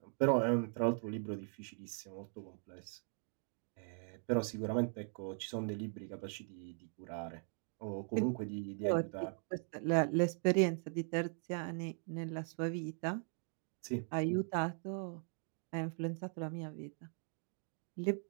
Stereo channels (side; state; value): left; silent; 51 dB below the other